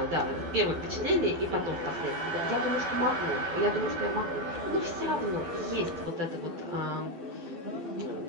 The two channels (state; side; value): late; left; 12 ms